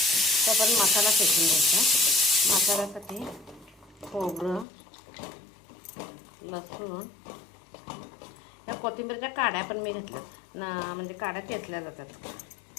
तर आपण मसाला शेकून घ्यायचा. मसाल्यासाठी खोबरं, लसूण, या कोथिंबीरच्या काड्या पण मी घेतल्या ना, म्हणजे काड्या चेचल्या जातात.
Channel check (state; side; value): drops out; right; at 4.7 s